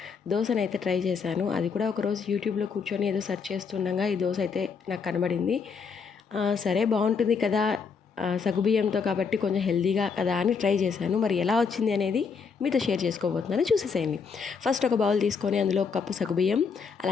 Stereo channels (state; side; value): quieter; right; 5.6 dB